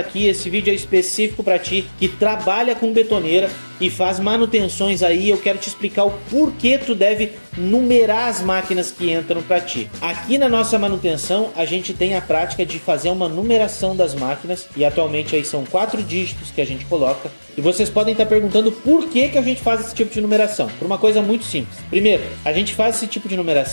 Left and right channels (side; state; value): both; inverted; correlation -1.00